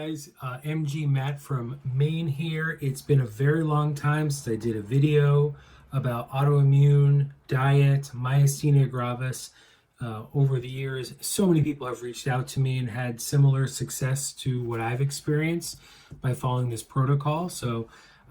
MG Matt from Maine here. It's been a very long time since I did a video about autoimmune diet, myasthenia gravis. Over the years, so many people have reached out to me and had similar success to what I've experienced by following this protocol. So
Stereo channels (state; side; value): identical; both; correlation 1.00